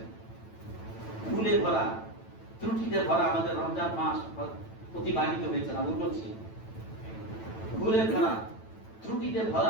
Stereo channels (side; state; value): right; late; 9.0 ms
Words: ভুলে ভরা, ত্রুটিতে ভরা আমাদের রমজান মাস অতিবাহিত হয়েছে না, বলছি ভুলে ভরা, ত্রুটিতে